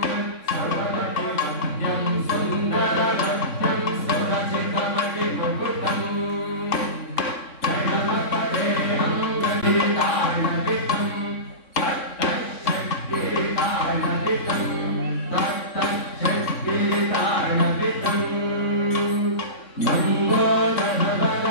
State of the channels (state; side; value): late; right; 3.6 ms